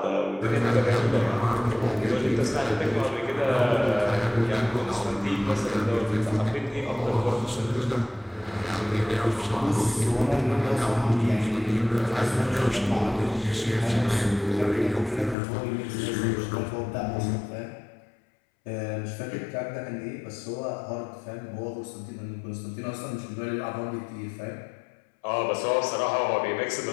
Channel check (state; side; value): drops out; right; at 15.4 s